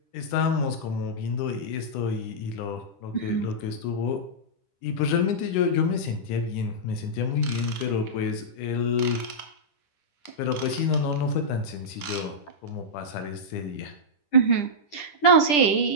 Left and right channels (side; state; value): right; late; 10 ms